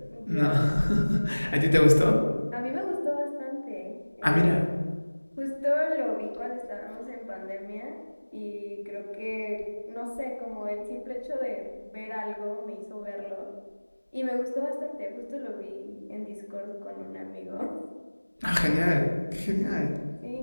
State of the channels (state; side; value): inverted; both; correlation -1.00